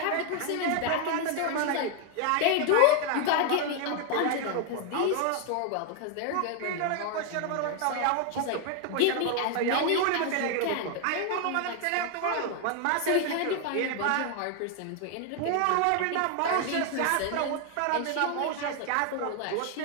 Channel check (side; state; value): both; different; correlation 0.01